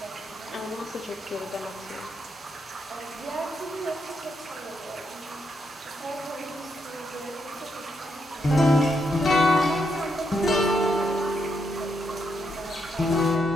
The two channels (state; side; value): normal; both; correlation 0.79